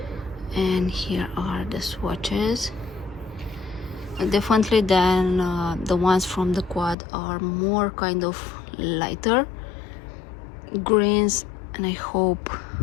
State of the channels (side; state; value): right; drops out; at 7.0 s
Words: And here are the swatches. Definitely then the ones from the quad are more kind of lighter greens, and I hope